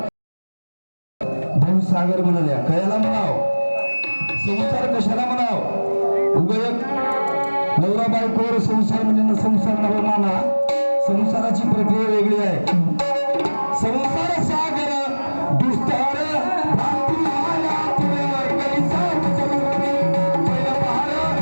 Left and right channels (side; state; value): both; inverted; correlation -1.00